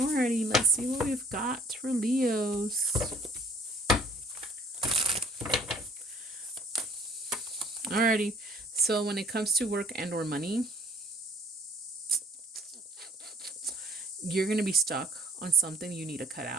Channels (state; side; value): normal; both; correlation 0.57